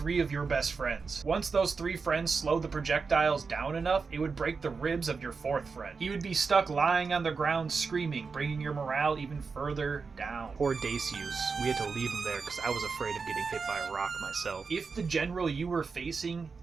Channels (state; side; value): quieter; left; 4.9 dB